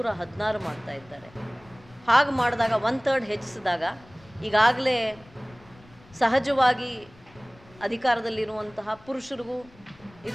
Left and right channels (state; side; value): noise; left; rumble, 25 dB below the sound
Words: ಮಾಡ್ತಾ ಇದ್ದಾರೆ. ಹಾಗೆ ಮಾಡಿದಾಗ 1/3 ಹೆಚ್ಚಿಸಿದಾಗ ಈಗಾಗಲೇ ಸಹಜವಾಗಿ ಅಧಿಕಾರದಲ್ಲಿರುವಂತಹ ಪುರುಷರಿಗೂ